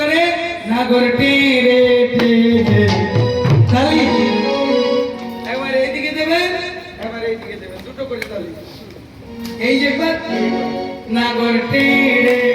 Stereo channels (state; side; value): identical; both; correlation 1.00